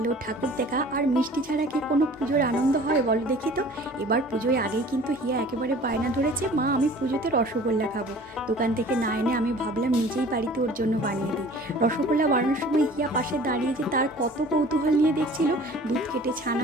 ঠাকুর দেখা আর মিষ্টি ছাড়া কি কোনো পুজোর আনন্দ হয় বলো দেখি তো। এবার পুজোয় আগেই কিন্তু হিয়া একেবারে বায়না ধরেছে, মা আমি পুজোতে রসগোল্লা খাবো। দোকান থেকে না এনে আমি ভাবলাম নিজেই বাড়িতে ওর জন্য বানিয়ে দিই। রসগোল্লা বানানোর সময় হিয়া পাশে দাঁড়িয়ে যে তার কত কৌতূহল নিয়ে দেখছিল। দুধ কেটে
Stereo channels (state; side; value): normal; both; correlation 0.47